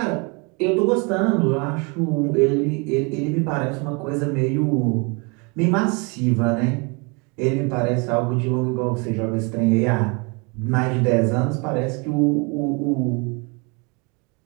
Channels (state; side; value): quieter; left; 30.9 dB